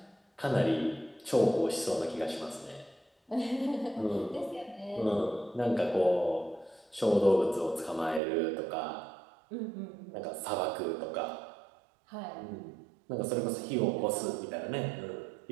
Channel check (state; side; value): drops out; left; at 8.2 s